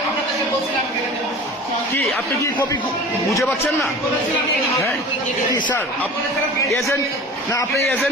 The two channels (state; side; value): normal; both; correlation 0.39